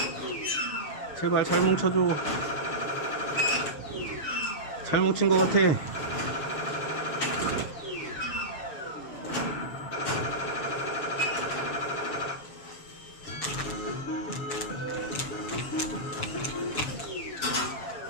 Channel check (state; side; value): late; right; 7.0 ms